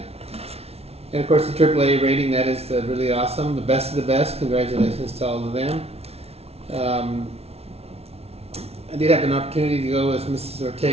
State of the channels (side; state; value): left; late; 0.30 ms